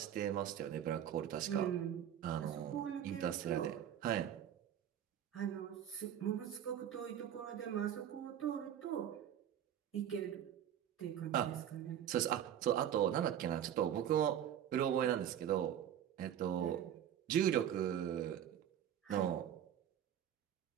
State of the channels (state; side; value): quieter; left; 10.2 dB